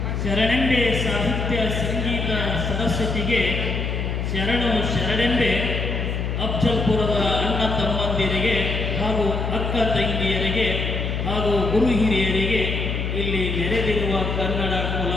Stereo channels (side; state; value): left; noise; hum, 2 dB below the sound